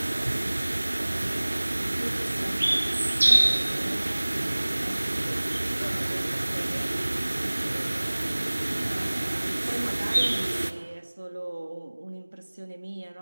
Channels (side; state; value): both; inverted; correlation -1.00